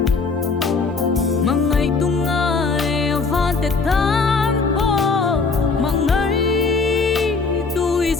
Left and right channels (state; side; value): quieter; right; 4.4 dB